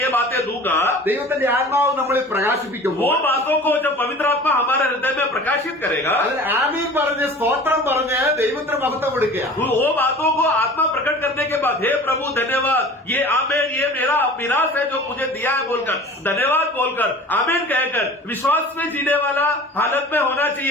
बातें दूंगा, ദൈവത്തിന്റെ ആത്മാവ് നമ്മളിൽ वो പ്രകാശിപ്പിക്കുമ്പോൾ बातों को जब पवित्र आत्मा हमारे हृदय में प्रकाशित करेगा, അതിന് ആമീൻ പറഞ്ഞ് സ്തോത്രം പറഞ്ഞ് ദൈവത്തിന് മഹത്വം കൊടുക്കുക. वो बातों को आत्मा प्रकट करने के बाद हे प्रभु धन्यवाद, ये आमेन, ये मेरा मिरास है जो मुझे दिया है बोलकर धन्यवाद बोलकर आमेन कहकर विश्वास में जीने वाला हालत में होना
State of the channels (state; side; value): normal; both; correlation 0.41